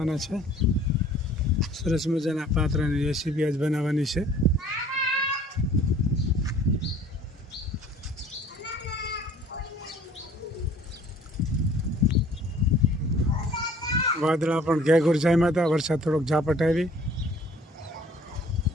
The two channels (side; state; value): both; normal; correlation 0.53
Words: છે. સરસ મજાના પાત્રાની રેસીપી આજ બનાવવાની છે. વાદળા પણ ઘેઘૂર જામ્યા હતા. વરસાદ થોડોક ઝાપટ આવી.